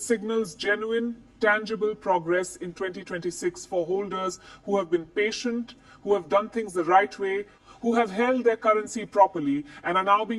signals genuine, tangible progress in 2026 for holders who have been patient, who have done things the right way, who have held their currency properly, and are now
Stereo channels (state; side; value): identical; both; correlation 1.00